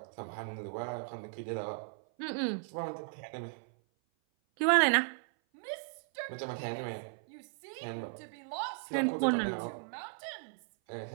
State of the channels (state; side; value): silent; left; 54 dB below the other